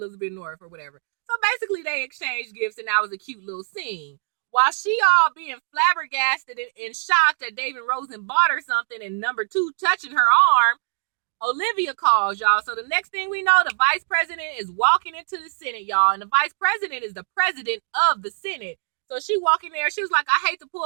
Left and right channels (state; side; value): silent; left; digital silence